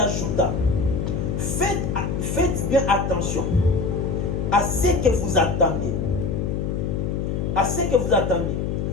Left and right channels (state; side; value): noise; left; hum, 1 dB below the sound